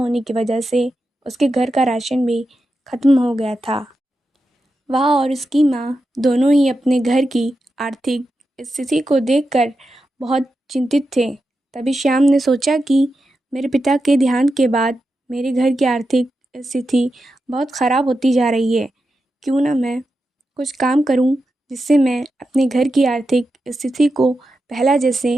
की वजह से उसके घर का राशन भी ख़त्म हो गया था। वह और उसकी माँ दोनों ही अपने घर की आर्थिक स्थिति को देखकर बहुत चिंतित थे। तभी श्याम ने सोचा कि मेरे पिता के देहांत के बाद मेरे घर की आर्थिक स्थिति बहुत ख़राब होती जा रही है। क्यों ना मैं कुछ काम करूं जिससे मैं अपने घर की आर्थिक स्थिति को पहला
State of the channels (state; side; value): normal; both; correlation 0.89